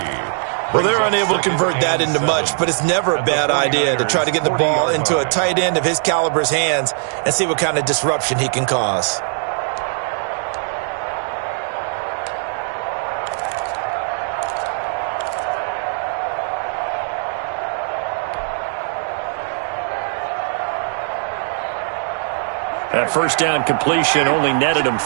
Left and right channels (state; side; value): silent; left; 66 dB below the other